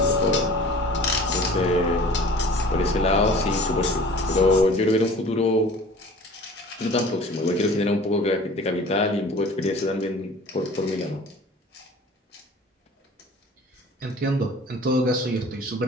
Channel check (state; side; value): normal; both; correlation 0.45